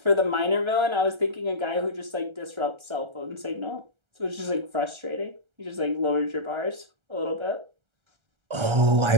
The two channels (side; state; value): left; late; 1.3 ms